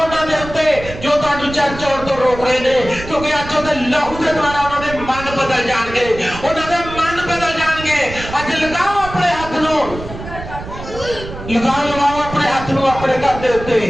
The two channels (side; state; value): right; noise; rumble, 11 dB below the sound